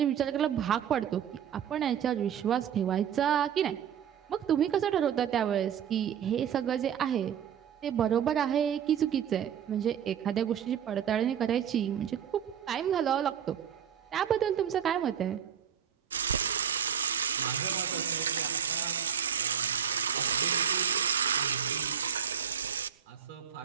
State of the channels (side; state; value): left; quieter; 8.5 dB